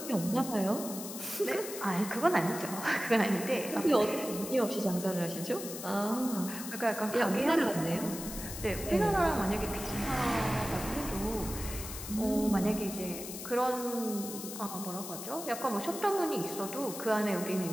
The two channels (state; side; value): noise; left; hiss, 9 dB below the sound